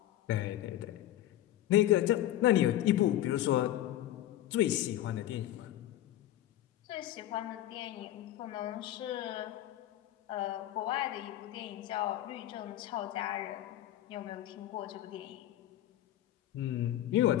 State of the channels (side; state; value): right; quieter; 13.4 dB